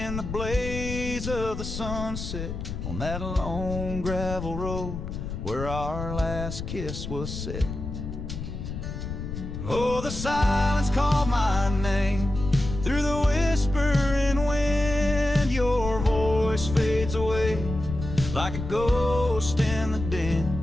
the blaze of the sunset on that lone gravel road where our last kiss was set. Oh, the silence called my name through the whispering wind. Your voice fades away like a ghost in the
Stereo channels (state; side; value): noise; left; rumble, 7 dB below the sound